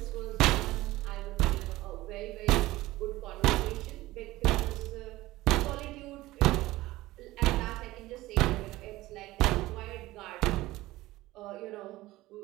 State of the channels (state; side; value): quieter; left; 17.9 dB